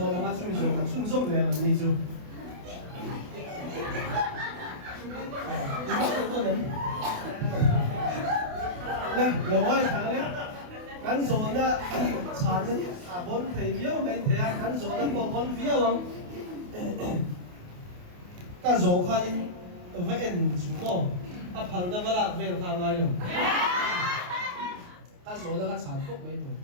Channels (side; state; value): left; late; 28 ms